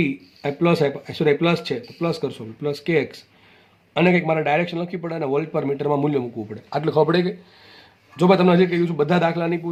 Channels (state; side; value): identical; both; correlation 1.00